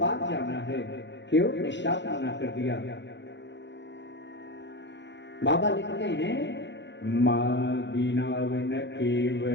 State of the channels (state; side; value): late; right; 0.52 ms